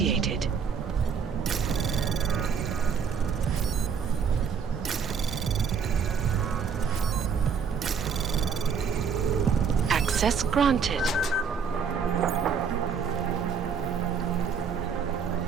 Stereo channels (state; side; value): quieter; left; 6.4 dB